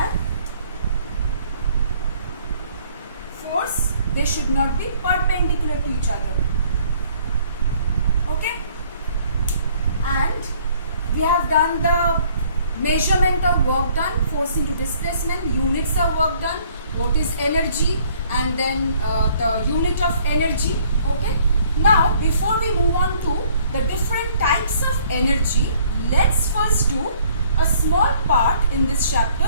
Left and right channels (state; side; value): inverted; both; correlation -0.60